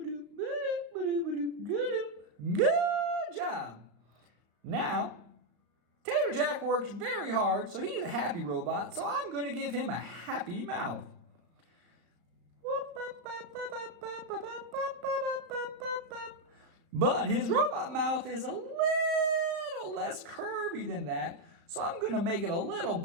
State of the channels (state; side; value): late; left; 34 ms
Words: Good job. Now, Tater-Jack worked very hard, so he's a happy robot, so I'm going to give him a happy mouth. But his robot mouth is a little less curvy than that, so I'm going to make it a little